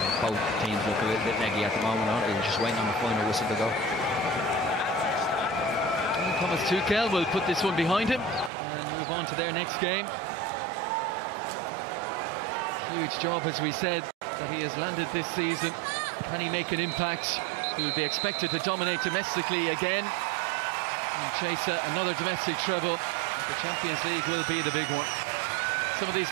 Both teams look a little bit neggy at the moment, aren't they? They're just waiting on the final whistle to go. And Thomas Tuchel will put this one behind him and move on to their next game. Huge job, as we said, that he has landed this season. Can he make an impact? He will be expected to dominate domestically again and chase another domestic treble. The Champions League will be the big one. Some of these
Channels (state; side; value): drops out; left; at 8.5 s